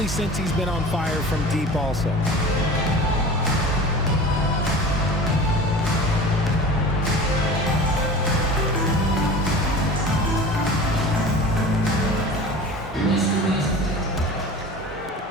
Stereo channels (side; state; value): both; normal; correlation 0.37